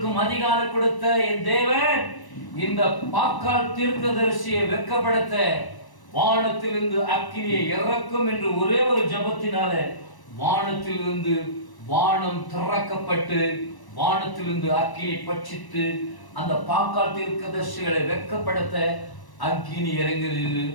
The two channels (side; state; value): right; late; 1.0 ms